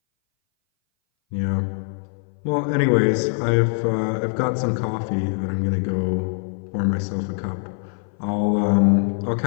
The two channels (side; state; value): right; silent; 60 dB below the other